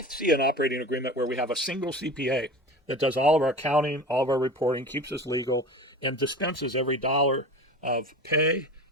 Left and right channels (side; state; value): both; normal; correlation 0.34